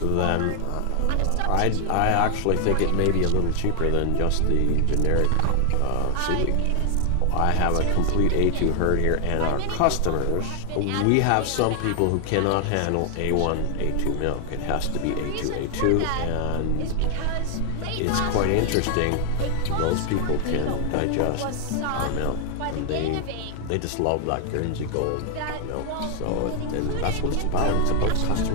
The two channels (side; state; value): both; different; correlation 0.00